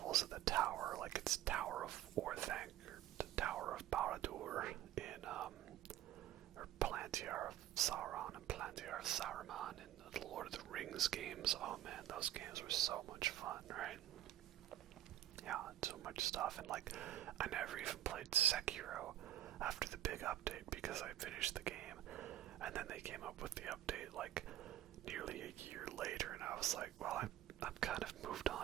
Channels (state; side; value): quieter; left; 12.8 dB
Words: of the tower. Like it's Tower of Orthanc or the Tower of Barad-dûr in or Palantir of Sauron and Palantir of Saruman in the Lord of the Rings games. Oh man, those games were so much fun, right? Yeah, so much stuff. And like, I never even played Sekiro after the big update because I finished the game. And then they came up with the update like nearly a year later, and I was like, well, I'm kind of moved